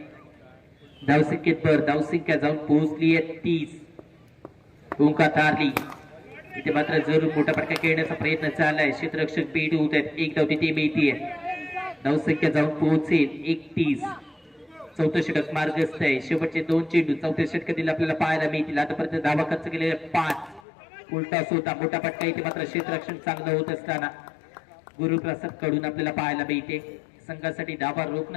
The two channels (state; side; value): drops out; right; at 20.6 s